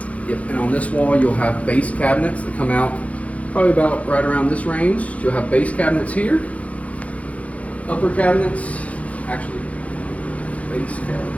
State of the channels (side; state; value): right; late; 0.066 ms